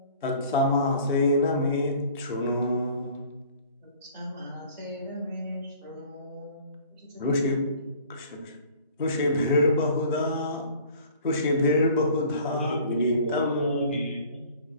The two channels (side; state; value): both; inverted; correlation -0.50